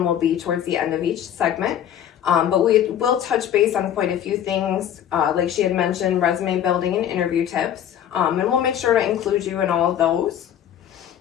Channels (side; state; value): right; quieter; 10.1 dB